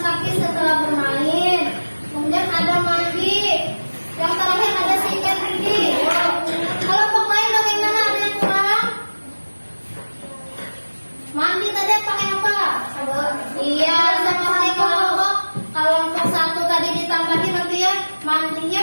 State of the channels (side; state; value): both; inverted; correlation -1.00